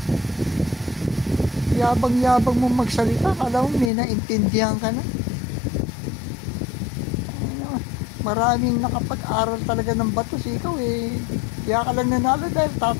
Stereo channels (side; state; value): right; drops out; at 3.9 s